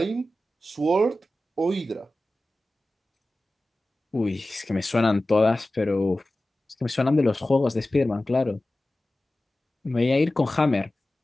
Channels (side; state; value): both; normal; correlation 0.96